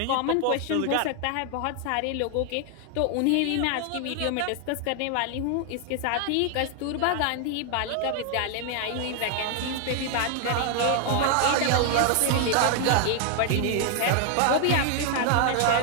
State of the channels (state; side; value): different; both; correlation 0.00